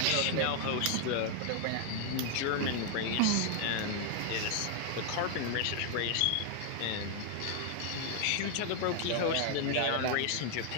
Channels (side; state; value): both; different; correlation 0.00